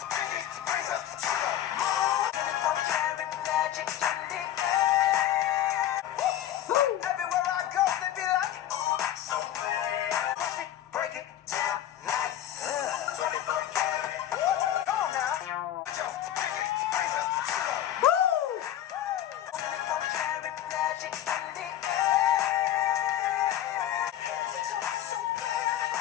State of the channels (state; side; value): quieter; right; 11.9 dB